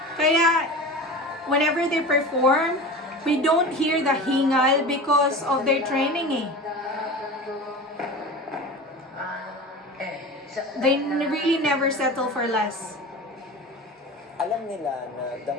Kaya, whenever they perform, we don't hear the hingal because of their training eh. They really never settle for less. Alam nila na the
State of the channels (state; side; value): normal; both; correlation 0.32